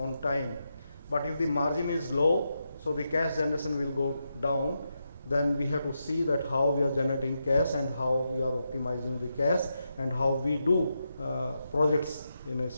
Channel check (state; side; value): inverted; both; correlation -0.85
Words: time. But if the margin is low, so the cash generation will go down, then we have to see that how we are generating cash and how we are optimizing the cash and how we do projects in a